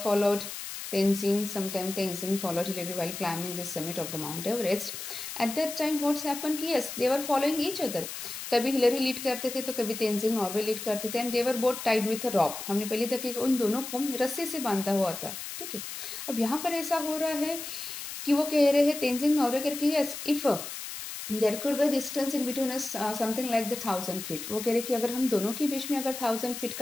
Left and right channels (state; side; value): noise; left; hiss, 8 dB below the sound